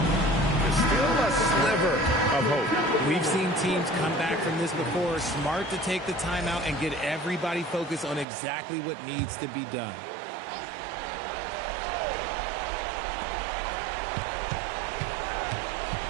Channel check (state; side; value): drops out; left; at 8.2 s